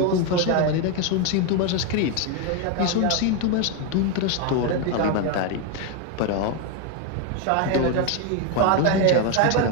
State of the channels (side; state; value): both; different; correlation 0.02